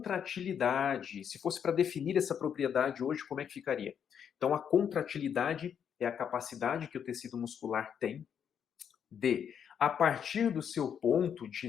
Se fosse para definir essa propriedade hoje, como é que ficaria? Então, a contratilidade é a capacidade que o tecido muscular tem de, a partir do seu ponto de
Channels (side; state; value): right; quieter; 8.1 dB